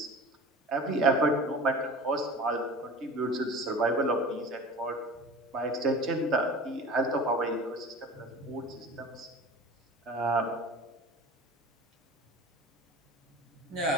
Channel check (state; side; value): normal; both; correlation 0.38